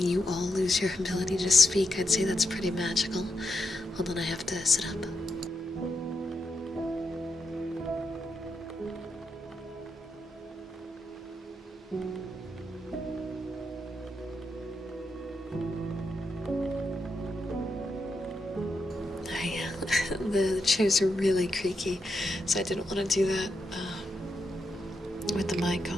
all lose your ability to speak. I'd say that's pretty magical. Hold on, I have to sit up. The chairs are really creaky, so I didn't want to do that with the mic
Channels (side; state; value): both; normal; correlation 0.84